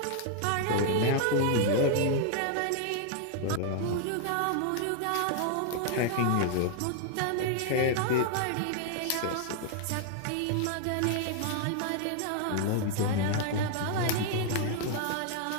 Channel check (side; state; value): both; different; correlation 0.00